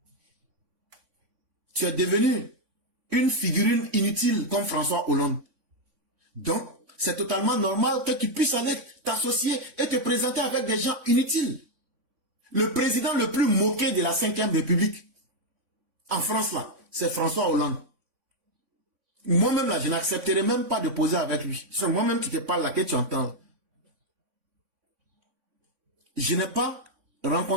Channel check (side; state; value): left; late; 3.5 ms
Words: Tu es devenu une figurine inutile comme François Hollande. Donc, c'est totalement normal que tu puisses aller t'associer et te présenter avec des gens inutiles. Le président le plus moqué de la 5e République, en France là, c'est François Hollande. Moi-même, là, je n'accepterai même pas de poser avec lui. C'est moi-même qui te parle là, que tu entends. Je n'ai pas